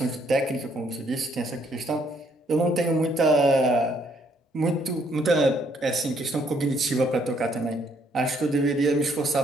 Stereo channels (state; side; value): normal; both; correlation 0.68